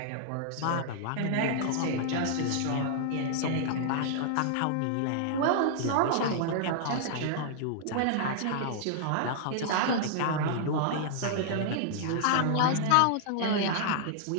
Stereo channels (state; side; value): different; both; correlation -0.01